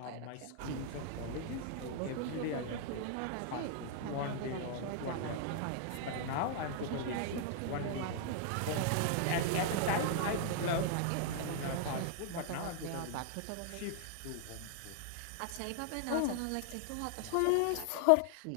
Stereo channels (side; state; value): both; different; correlation 0.00